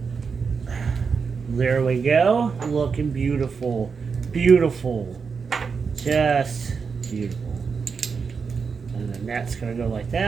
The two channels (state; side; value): quieter; left; 5.5 dB